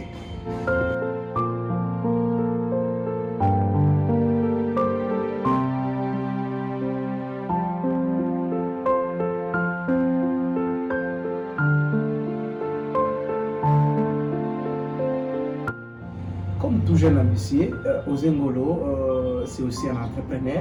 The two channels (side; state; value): both; identical; correlation 1.00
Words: Comme tout jeune ambitieux, Osé Ngolo, c'est aussi un